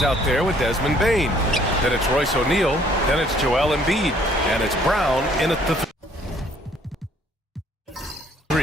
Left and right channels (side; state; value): both; normal; correlation 0.61